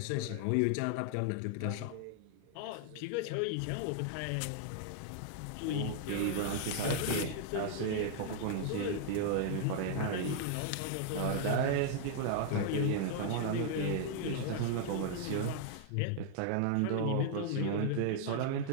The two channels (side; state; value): both; different; correlation 0.00